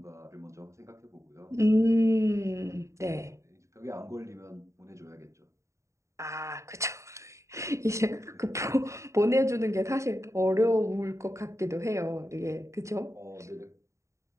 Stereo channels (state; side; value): late; left; 0.14 ms